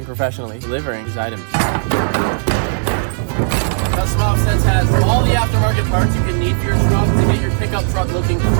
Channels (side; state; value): left; silent; 58 dB below the other